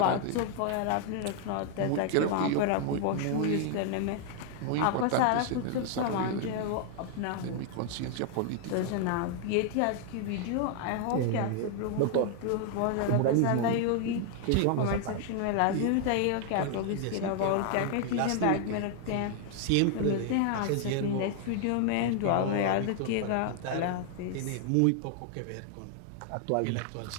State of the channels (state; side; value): different; both; correlation 0.00